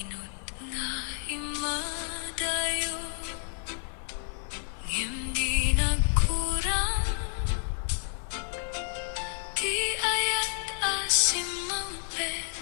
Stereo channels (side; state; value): right; silent; 56 dB below the other